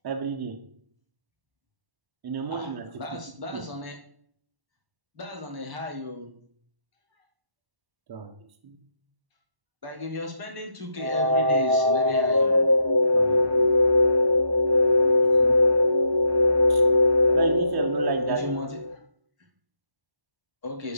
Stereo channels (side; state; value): left; late; 1.1 ms